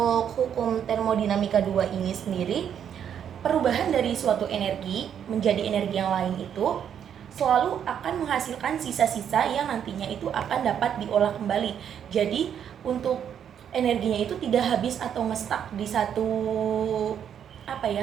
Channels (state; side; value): quieter; left; 8.8 dB